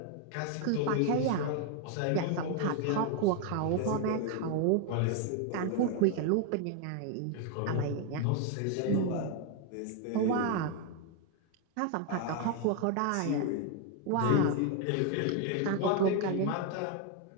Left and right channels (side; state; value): both; different; correlation 0.01